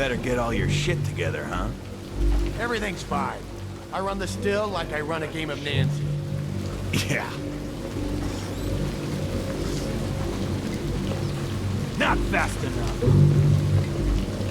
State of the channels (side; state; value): both; identical; correlation 1.00